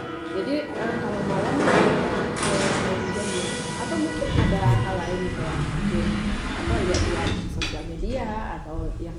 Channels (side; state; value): both; identical; correlation 1.00